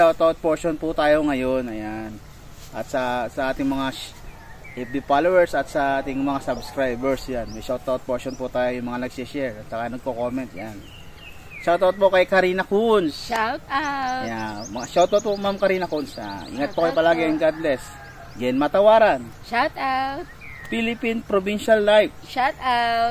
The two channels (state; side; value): identical; both; correlation 1.00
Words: portion po tayo ngayon. Ayan. At sa ating mga FB followers at sa ating mga subscribers. Yan. May shoutout portion po tayo, yung mga nagsishare at saka nagko-comment. Yan. Shoutout po kay Karina Kunz. Shout out. Ayan. Shoutout po Ma'am Karina Kunz. Ingat po kayo palagi and God bless. Gen Matawaran. Shout out. Philippine Provincial Life. Shout